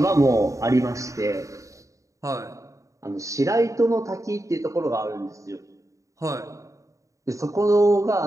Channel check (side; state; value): left; late; 0.16 ms